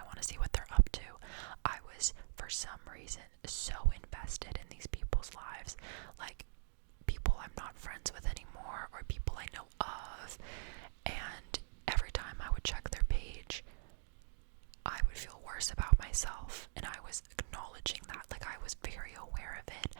want to see what they're up to. I was, for some reason, so invested in these people's lives, like people I'm not friends with anymore or people I know of, and every time I would check their page, I would feel worse about myself, and I was acknowledging that, like, I was very aware of it,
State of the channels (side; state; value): left; silent; digital silence